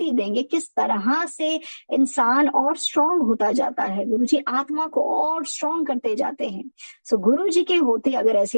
देंगे। किस तरह से इंसान और स्ट्रांग होता जाता है, गुरु जी आत्मा को और स्ट्रांग करते जाते हैं। सो गुरु जी के होते अगर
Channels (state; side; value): inverted; both; correlation -1.00